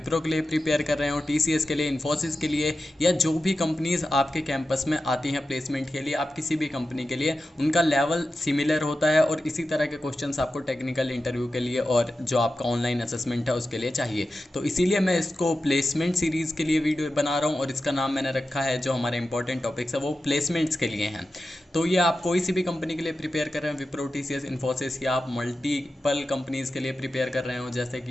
के लिए प्रिपेयर कर रहे हो, टीसीएस के लिए, इन्फोसिस के लिए, या जो भी कंपनीज आपके कैंपस में आती हैं प्लेसमेंट के लिए, आप किसी भी कंपनी के लिए, उनका लेवल सिमिलर होता है और इसी तरह के क्वेश्चंस आपको टेक्निकल इंटरव्यू के लिए और जो आपका ऑनलाइन असेसमेंट है उसके लिए चाहिए। तो इसीलिए मैं इसको प्लेसमेंट सीरीज़ के लिए वीडियो बना रहा हूँ और इसका नाम मैंने रखा है, जो हमारे इंपॉर्टेंट टॉपिक्स है वो प्लेसमेंट्स के लिए हैं। तो ये आप कोई सी भी कंपनी के लिए प्रिपेयर कर रहे हैं, विप्रो, टीसीएस, इन्फोसिस, या आप मल्टीपल कंपनीज़ के लिए प्रिपेयर कर रहे हो, जैसे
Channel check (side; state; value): both; normal; correlation 0.92